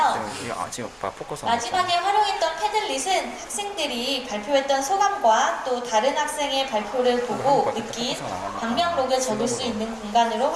지금 포커스 마지막에 활용했던 패들릿은 학생들이 발표했던 소감과 또 다른 학생의 발표를 보고 느낀 방명록을 적을 수 있는 공간으로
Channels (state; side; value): identical; both; correlation 1.00